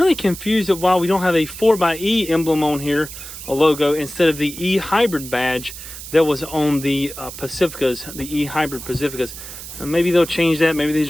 confused at why we don't have a 4xe emblem on here, a logo, instead of the E-Hybrid badge that was on the Pacificas, the E-Hybrid Pacificas. Maybe they'll change that. Maybe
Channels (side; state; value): right; noise; hiss, 12 dB below the sound